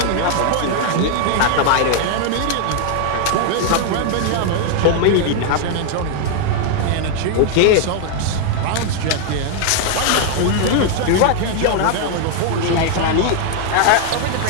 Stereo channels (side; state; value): both; different; correlation 0.00